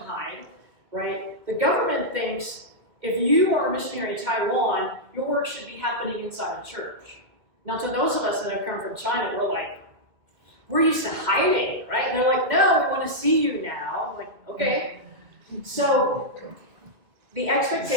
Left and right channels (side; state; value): left; late; 2.1 ms